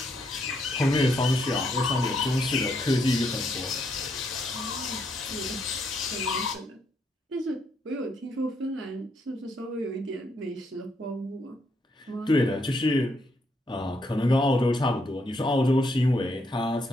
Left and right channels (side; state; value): both; normal; correlation 0.76